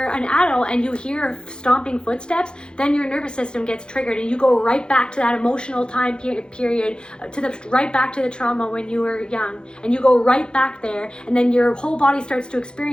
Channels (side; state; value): right; late; 0.049 ms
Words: an adult and you hear stomping footsteps, then your nervous system gets triggered, and you go right back to that emotional time period, right back to the trauma when you were young, and you go right back there, and then your whole body starts to